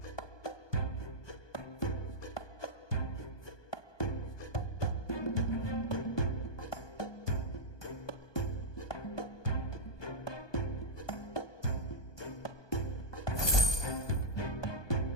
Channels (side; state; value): right; late; 1.2 ms